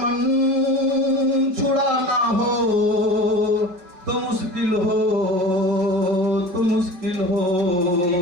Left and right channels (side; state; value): left; late; 5.4 ms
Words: छुड़ाना हो तो मुश्किल हो, तो मुश्किल हो,